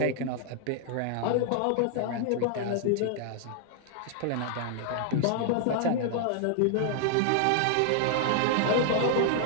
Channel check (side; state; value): both; different; correlation 0.00